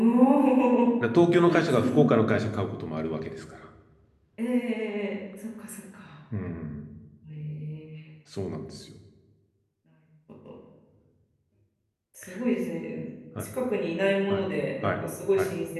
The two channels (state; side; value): identical; both; correlation 1.00